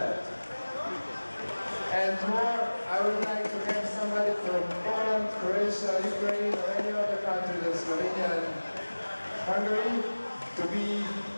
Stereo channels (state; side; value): inverted; both; correlation -1.00